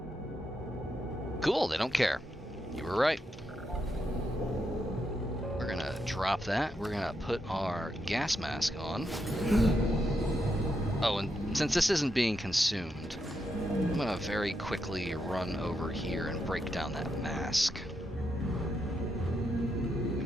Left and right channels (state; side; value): normal; both; correlation 0.82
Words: Cool, they don't care. You were right. We're gonna drop that. We're gonna put our gas mask on. Oh, and since this isn't being consumed, I'm gonna very quickly run over here and break down that mask.